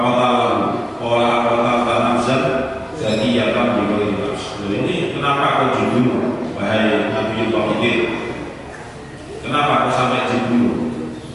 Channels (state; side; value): identical; both; correlation 1.00